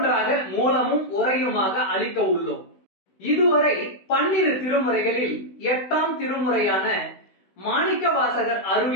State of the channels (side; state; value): right; late; 16 ms